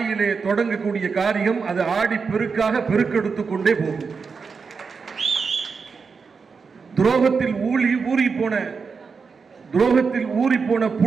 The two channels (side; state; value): left; quieter; 5.2 dB